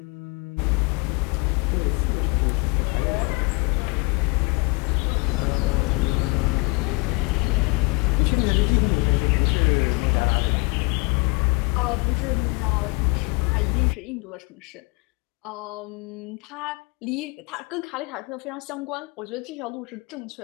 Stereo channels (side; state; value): right; quieter; 28.2 dB